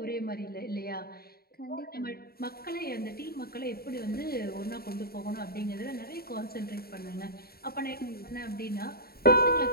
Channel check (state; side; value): late; right; 0.45 ms